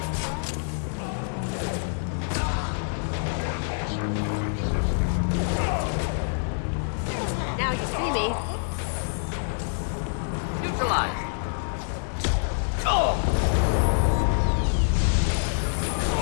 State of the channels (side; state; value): right; silent; digital silence